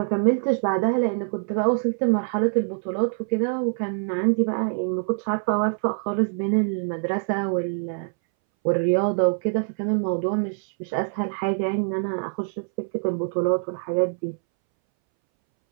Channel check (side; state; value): left; silent; 62 dB below the other